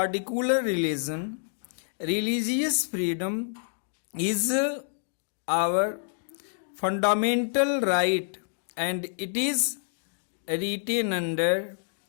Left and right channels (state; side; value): silent; right; digital silence